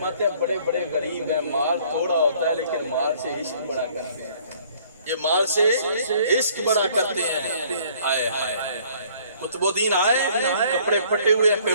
ہیں بڑے بڑے غریب ہیں، مال تھوڑا ہوتا ہے لیکن مال سے عشق بڑا کرتے ہیں، یہ مال سے عشق بڑا کرتے ہیں۔ آئے قطب الدین آئے، کپڑے پھٹے ہوئے ہیں،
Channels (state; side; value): inverted; both; correlation -0.58